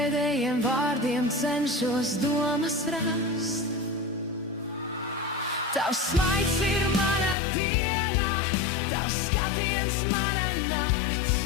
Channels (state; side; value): drops out; right; at 7.4 s